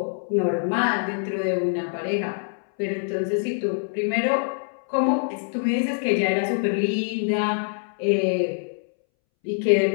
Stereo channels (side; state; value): right; silent; 62 dB below the other